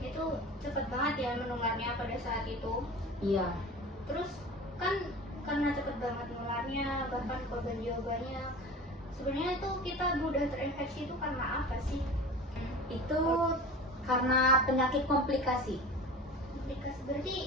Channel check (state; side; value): normal; both; correlation 0.36